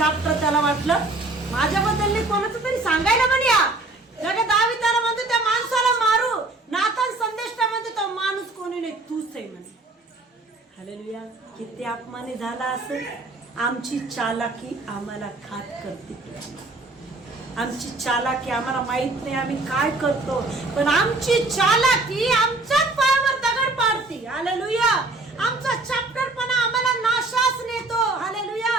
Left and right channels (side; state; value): left; quieter; 3.0 dB